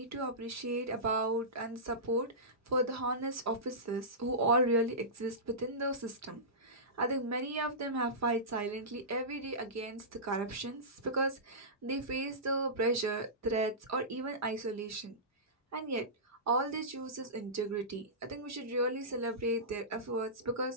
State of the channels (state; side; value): normal; both; correlation -0.19